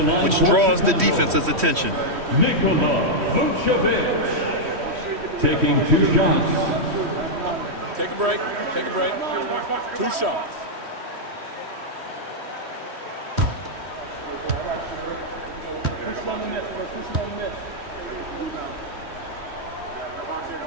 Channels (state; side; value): late; left; 3.1 ms